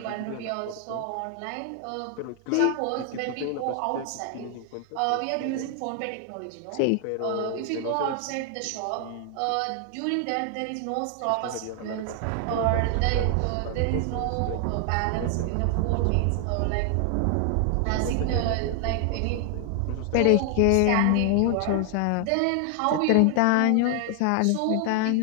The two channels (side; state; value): both; different; correlation 0.00